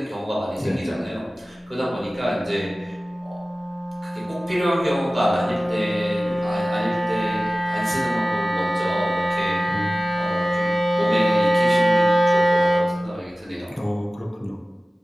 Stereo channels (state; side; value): normal; both; correlation 0.97